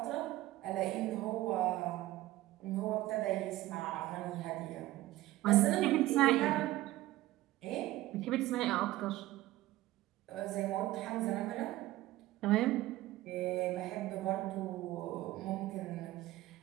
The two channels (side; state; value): left; quieter; 16.4 dB